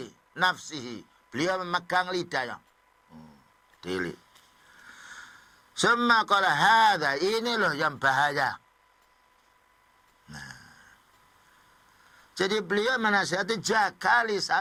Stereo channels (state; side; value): identical; both; correlation 1.00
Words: nafsihi. Beliau memegang lidahnya. Dili. Summa qala hadha, ini loh yang bahaya. Nah. Jadi beliau menasihati, jaga